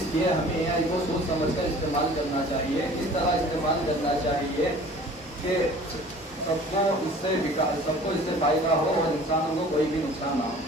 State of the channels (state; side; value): normal; both; correlation 0.47